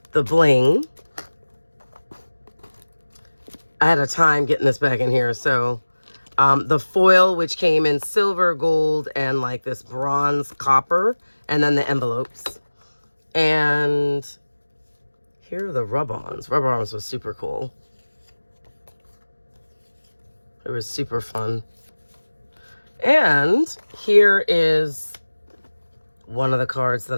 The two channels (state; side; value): inverted; both; correlation -1.00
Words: the bling. I had a time getting this back in here. So the foil, which came in silver, gold, and like this bronze copper, and then the envelopes. And here are the rub-ons. Rub-ons was super cool. It was super fun. And here is one of the cards